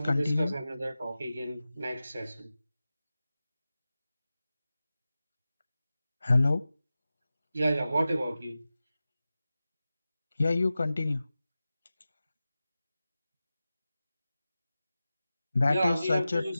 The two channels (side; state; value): both; inverted; correlation -0.95